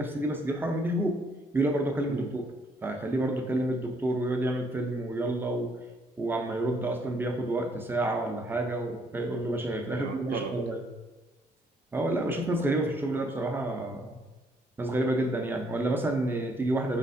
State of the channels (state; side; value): normal; both; correlation 0.68